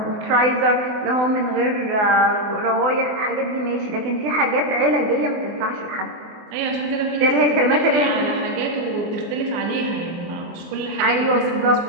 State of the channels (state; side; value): late; left; 24 ms